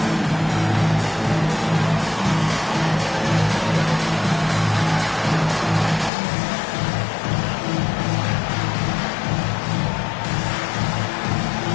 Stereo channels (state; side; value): drops out; right; at 6.1 s